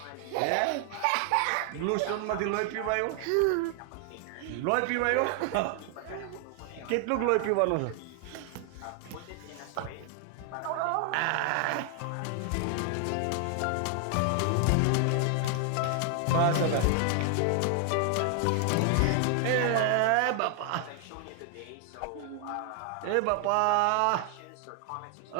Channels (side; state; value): both; different; correlation 0.00